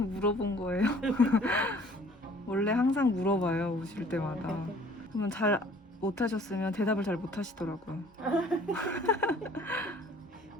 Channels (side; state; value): both; normal; correlation 0.54